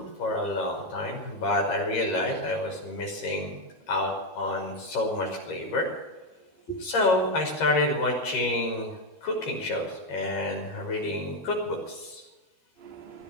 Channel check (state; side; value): late; right; 13 ms